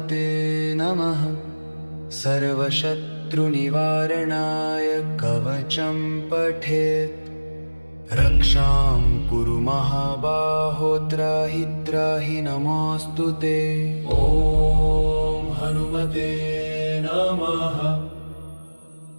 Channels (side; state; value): both; inverted; correlation -1.00